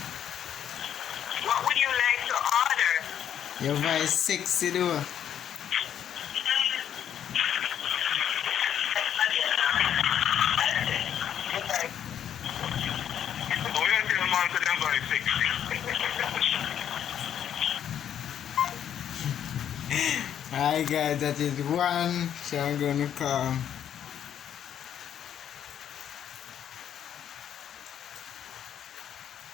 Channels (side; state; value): right; quieter; 9.6 dB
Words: What would you like to order? Your voice sexy, though. Hi guys, that is one, so I'm gonna call.